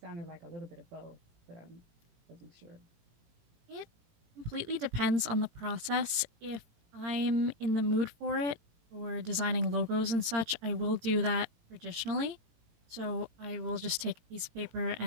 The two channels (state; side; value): late; left; 18 ms